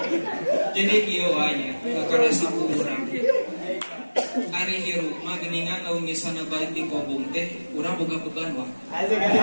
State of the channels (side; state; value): both; inverted; correlation -1.00